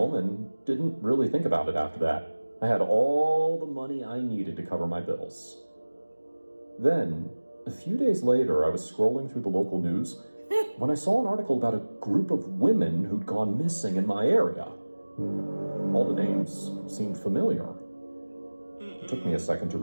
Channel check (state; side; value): inverted; both; correlation -1.00